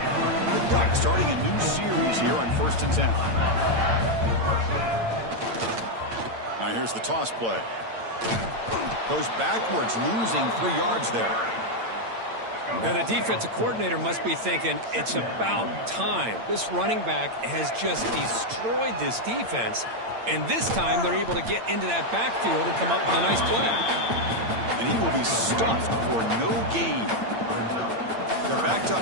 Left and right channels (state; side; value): late; left; 8.8 ms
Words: The Ducks starting a new series here on 1st and 10. Now here's the toss play. Goes backwards, losing 3 yards there. Now the defensive coordinator must be thinking it's about time. This running back has just destroyed this defense. And this time they're able to get into that backfield and come up with a nice play. And he will be stuffed for no gain. They're backed